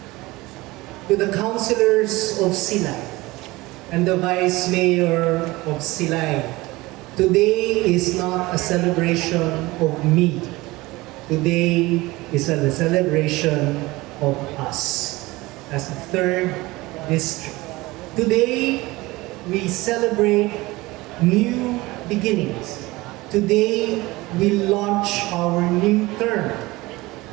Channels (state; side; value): quieter; left; 20.7 dB